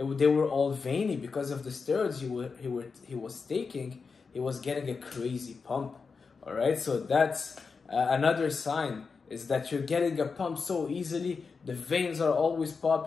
were all veiny because of the steroids he was taking. He was getting a crazy pump. All right, so that's another sign, is that you're getting a pump so easily. The veins are always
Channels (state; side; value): quieter; right; 5.0 dB